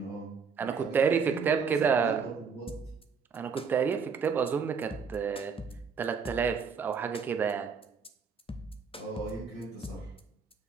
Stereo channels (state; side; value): quieter; left; 5.9 dB